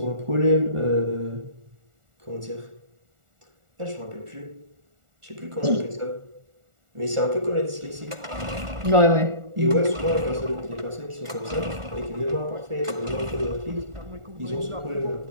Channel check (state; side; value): late; left; 1.4 ms